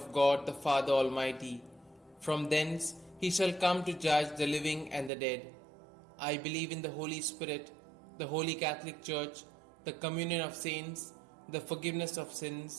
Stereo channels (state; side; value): drops out; left; at 5.1 s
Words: God the Father Almighty. From thence he shall come to judge the living and the dead. I believe in the Holy Spirit, the Holy Catholic Church, the communion of saints, the forgiveness of